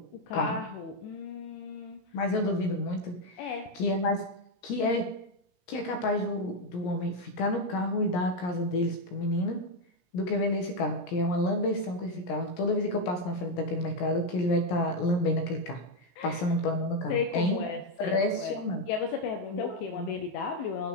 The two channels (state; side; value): late; right; 17 ms